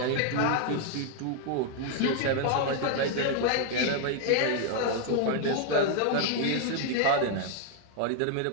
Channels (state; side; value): different; both; correlation 0.00